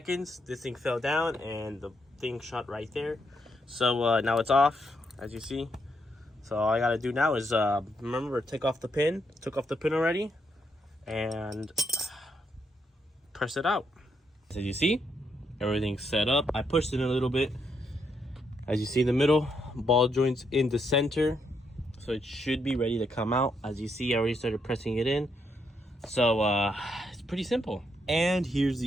This thing fell down and the thing shot right there. So now it's off, as you see. So all I gotta do now is remember, take off the pin. Took off the pin already, and press it out. As you see, everything's set up. I pushed it a little bit. As you see in the middle, ball joints in the center, so it should be ready to come out. As you see, I already started pressing it in. So it's pretty simple. And here's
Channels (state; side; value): normal; both; correlation 0.78